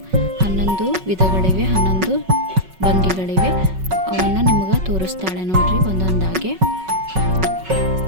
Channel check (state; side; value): late; left; 5.4 ms